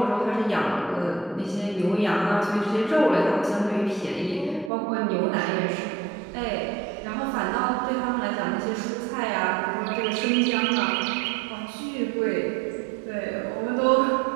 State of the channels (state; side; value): drops out; left; at 4.7 s